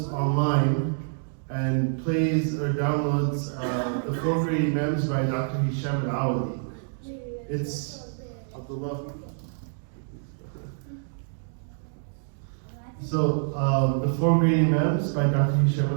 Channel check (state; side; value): silent; left; digital silence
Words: online and plays or downloads the four great Imams by Dr. Hisham al-Awadi. It's Abdullah. So, the four great Imams by Dr.